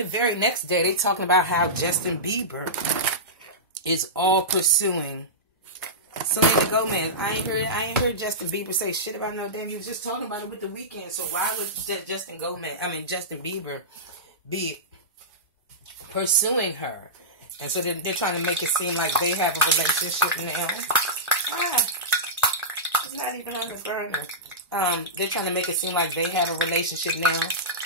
very next day, they talking about how Justin Bieber is all pursuing Selena Gomez. I ain't heard Justin Bieber say shit about no damn. You was just talking about it with The Weeknd. So why would Justin Bieber be pursuing her? And so they're trying to make it seem like they have a relationship now. It's not even on the burner. They're trying to make it seem like they have a relationship now.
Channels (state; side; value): normal; both; correlation -0.16